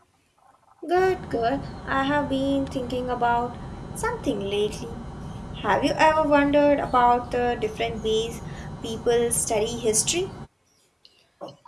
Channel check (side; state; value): both; identical; correlation 1.00